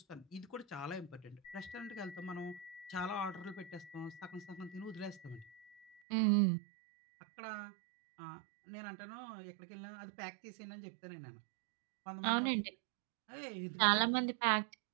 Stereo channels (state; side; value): drops out; left; at 6.0 s